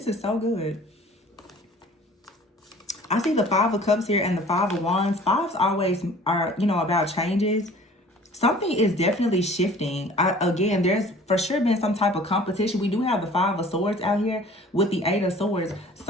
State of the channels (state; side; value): normal; both; correlation 0.49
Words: is so good. I see the Five of Cups here and the Five of Wands. Fives always are, about changes. Something is definitely shifting. Again, there's for sure been some type of competition. We do have the Five of Swords out here with the Eight of Swords.